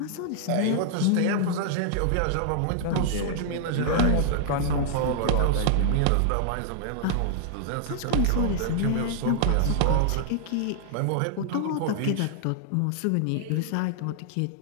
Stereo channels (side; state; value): both; different; correlation -0.01